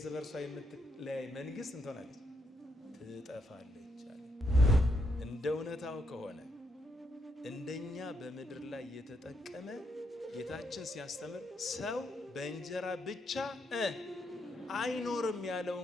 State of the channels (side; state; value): both; normal; correlation 0.78